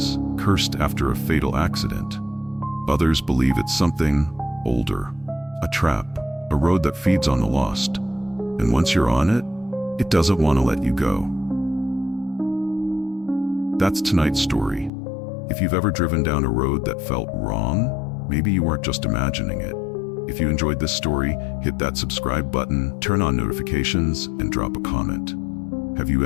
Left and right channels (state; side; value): drops out; right; at 14.9 s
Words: cursed after a fatal accident. Others believe it's something older, a trap, a road that feeds on the lost. And once you're on it, it doesn't want to let you go. That's tonight's story. If you've ever driven down a road that felt wrong, maybe you weren't just imagining it. If you enjoyed this story, hit that subscribe button, turn on notifications, and drop a comment. Have you